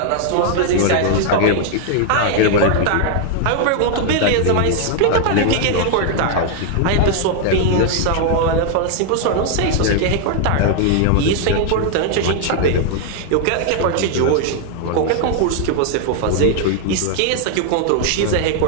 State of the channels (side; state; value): both; different; correlation 0.00